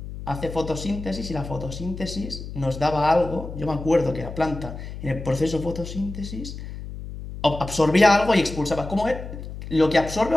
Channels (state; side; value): noise; left; hum, 10 dB below the sound